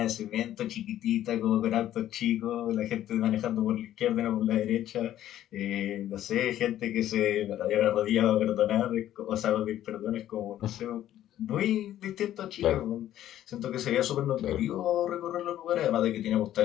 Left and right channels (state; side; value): quieter; right; 12.3 dB